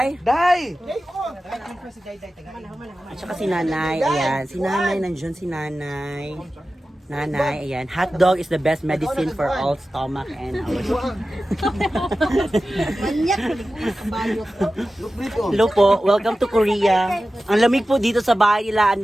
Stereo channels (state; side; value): normal; both; correlation 0.94